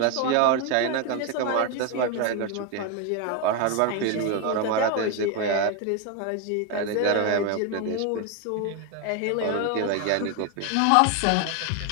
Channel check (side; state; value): both; different; correlation 0.01